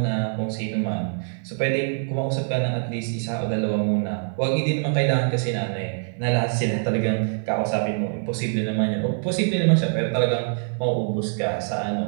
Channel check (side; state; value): left; silent; 57 dB below the other